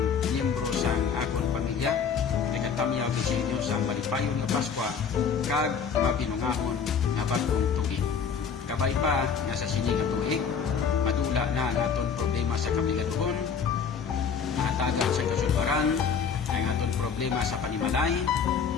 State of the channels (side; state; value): right; quieter; 6.4 dB